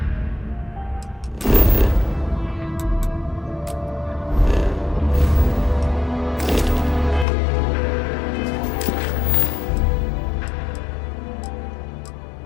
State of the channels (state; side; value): drops out; right; at 7.2 s